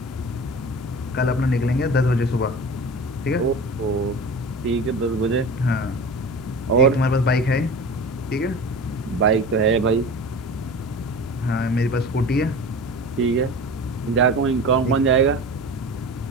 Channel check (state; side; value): noise; right; rumble, 25 dB below the sound